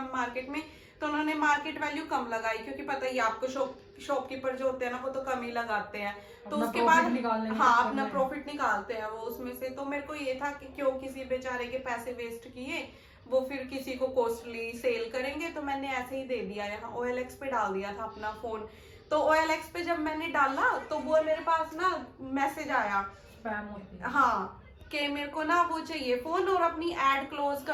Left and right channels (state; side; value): identical; both; correlation 1.00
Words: मार्केट में, तो उन्होंने मार्केट वैल्यू कम लगाई क्योंकि पता ही आपको शॉपकीपर जो होते हैं ना वो तो कम ही लगाते हैं. तो उसके बाद हाँ अपना प्रॉफिट निकालते हैं वो उसमें से. तो मेरे को ये था कि क्यों किसी बेचारे के पैसे वेस्ट किए, वो फिर किसी को कॉस्टली सेल करेंगे. तो मैंने ऐसे ही दे दिया, यहाँ OLX पे डाल दिया था अपना फोन. तो OLX पे जब मैंने डाला तो वो मेरे पास ना मैसेज आया हाँ कि मेरे को ना वो चाहिए फोन और अपनी एड क्लोज